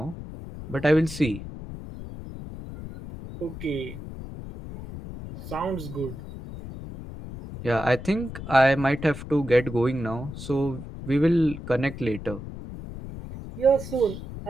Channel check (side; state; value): left; noise; rumble, 11 dB below the sound